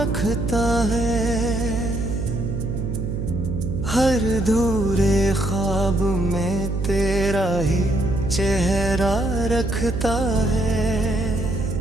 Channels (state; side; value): noise; right; hum, 3 dB below the sound